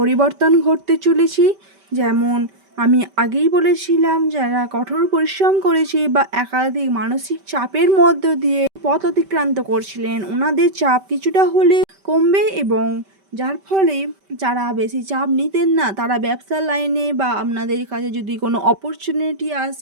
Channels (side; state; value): left; late; 5.2 ms